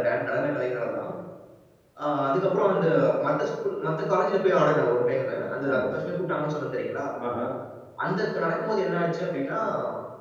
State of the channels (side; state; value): both; identical; correlation 1.00